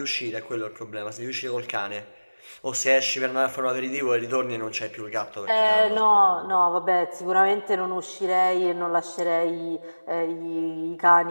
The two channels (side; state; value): both; inverted; correlation -1.00